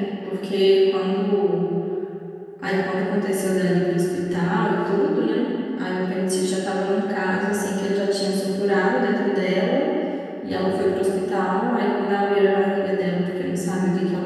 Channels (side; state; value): both; identical; correlation 1.00